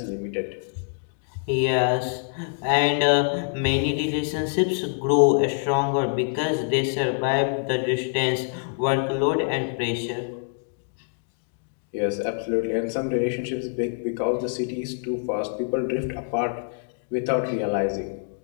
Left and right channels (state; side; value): silent; right; digital silence